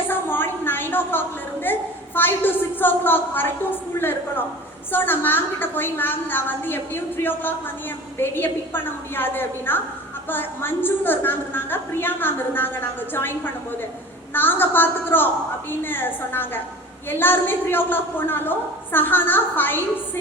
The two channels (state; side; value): normal; both; correlation 0.40